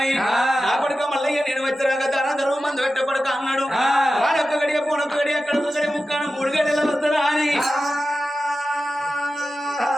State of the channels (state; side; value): normal; both; correlation 0.93